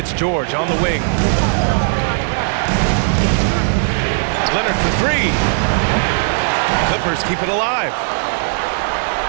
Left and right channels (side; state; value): left; silent; digital silence